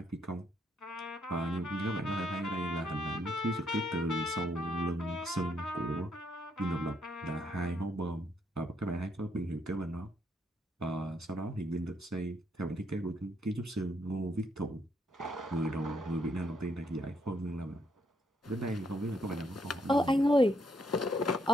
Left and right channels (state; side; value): normal; both; correlation 0.73